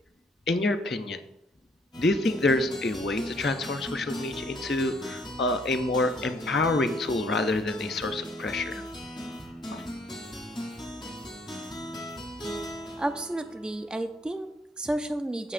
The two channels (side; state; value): both; normal; correlation 0.65